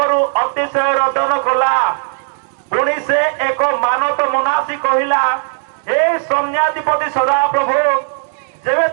ଅତିଶୟ ରୋଦନ କଲା। ପୁଣି ସେ ଏକ ମାନତ ମନାସି କହିଲା, ହେ ସୈନ୍ୟାଧିପତି ସଦାପ୍ରଭୁ, ଯେବେ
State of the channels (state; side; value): silent; left; digital silence